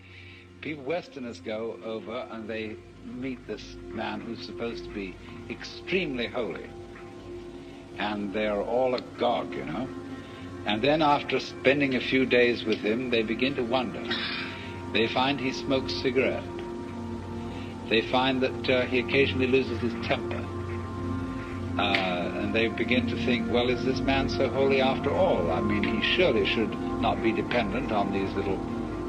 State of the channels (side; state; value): both; identical; correlation 1.00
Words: People, Westerners go over and they meet this man who's supposed to be extremely holy. And they're all agog, you know. And then after spending a few days with him, they begin to wonder. They find he smokes cigarette. They find that he occasionally loses his temper. And they begin to think, well, is this man so holy after all? I mean, he surely should not be dependent on these little